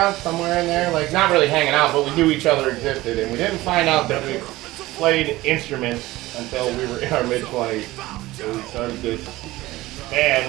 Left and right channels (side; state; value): left; quieter; 18.1 dB